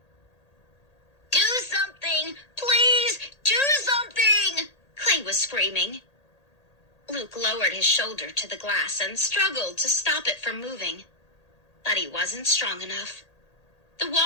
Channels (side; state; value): right; late; 1.8 ms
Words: "Do something! Please, do something!" Clay was screaming. Luke lowered his shoulder to the glass and struggled to stop it from moving. But he wasn't strong enough. The